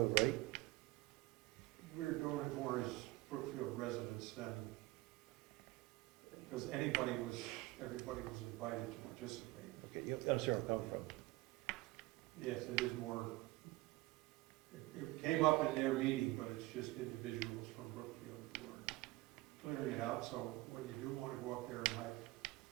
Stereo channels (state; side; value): quieter; left; 20.5 dB